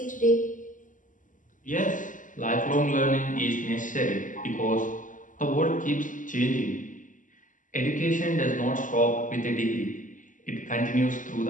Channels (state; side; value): late; right; 0.38 ms